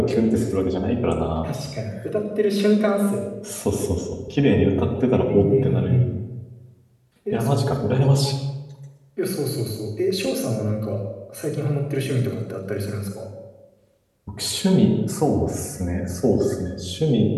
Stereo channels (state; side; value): identical; both; correlation 1.00